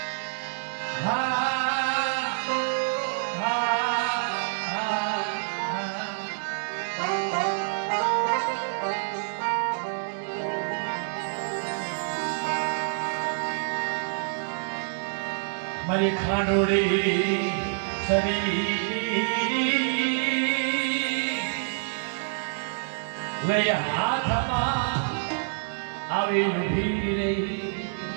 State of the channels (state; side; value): silent; left; digital silence